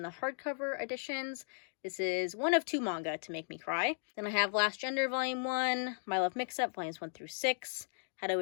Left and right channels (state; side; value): silent; right; digital silence